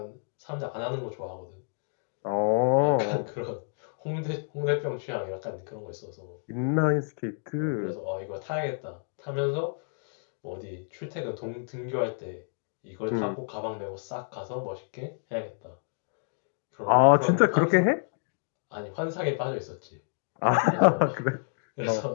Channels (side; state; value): right; silent; digital silence